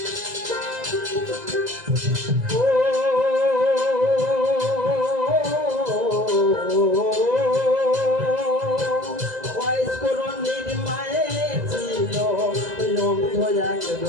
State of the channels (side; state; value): left; late; 2.0 ms